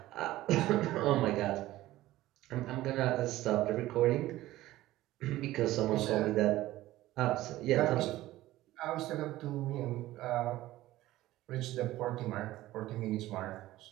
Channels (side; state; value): left; quieter; 16.1 dB